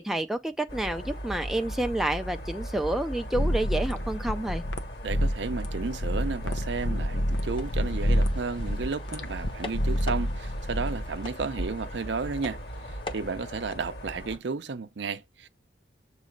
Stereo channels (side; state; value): both; normal; correlation 0.71